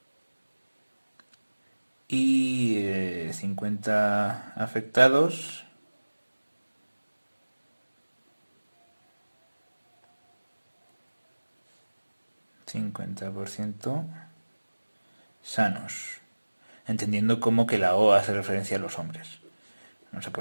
y 50 afectados, sanos, entendiendo como que la O hace referencia a los hombres. Vamos a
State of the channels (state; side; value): inverted; both; correlation -1.00